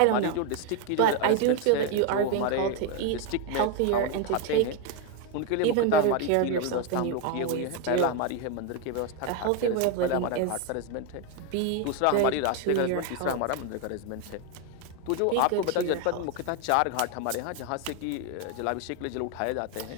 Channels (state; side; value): different; both; correlation 0.01